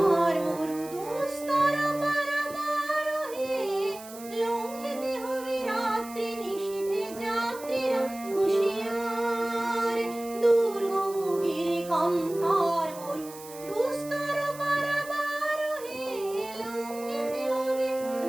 মরু দুস্তর পারাবার হে, লঙ্ঘিতে হবে রাত্রি নিশীথে যাত্রীরা হুঁশিয়ার। দুর্গম গিরিখান্তার মরু দুস্তর পারাবার হে, লঙ্ঘিতে হবে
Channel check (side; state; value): right; noise; hiss, 16 dB below the sound